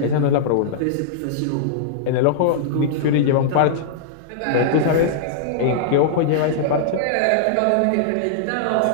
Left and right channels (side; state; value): both; different; correlation -0.02